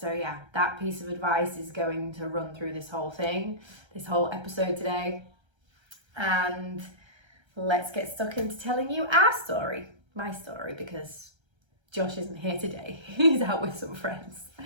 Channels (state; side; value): late; left; 1.3 ms